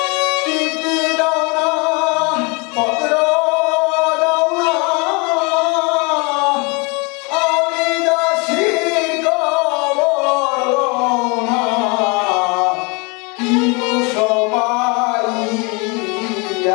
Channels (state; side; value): quieter; right; 29.9 dB